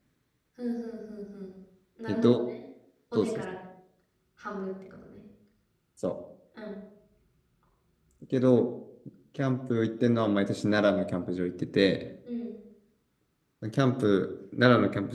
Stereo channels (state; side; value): identical; both; correlation 1.00